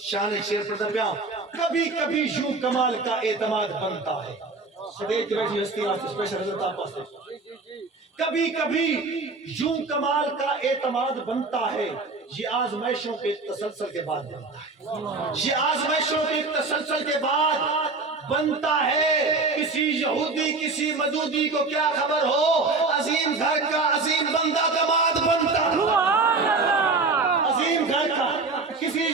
شان شیر پڑھتا پہ کبھی کبھی یوں کمال کا اعتماد بنتا ہے سدیج بیٹھی ہستی آج اسپیشل حضرت آپ پاس کبھی کبھی یوں کمال کا اعتماد بنتا ہے یہ آزمائشوں کے تسلسل کے بعد بنتا ہے یہ آزمائشوں کے تسلسل کے بعد بنتا ہے کسی یہودی کسی مجودی کو کیا خبر ہو عظیم گھر کا عظیم بندہ دماد بنتا ہے عظیم گھر کا کسی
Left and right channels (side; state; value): left; quieter; 3.8 dB